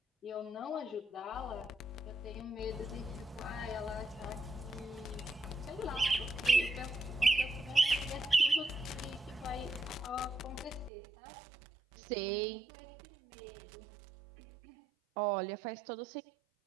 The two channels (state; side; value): drops out; left; at 10.9 s